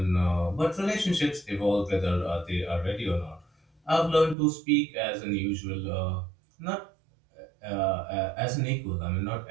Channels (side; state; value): left; drops out; at 4.4 s